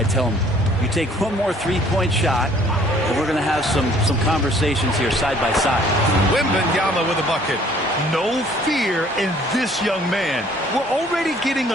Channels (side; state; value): both; normal; correlation 0.58